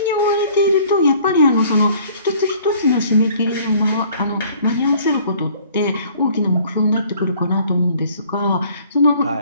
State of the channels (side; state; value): both; inverted; correlation -0.55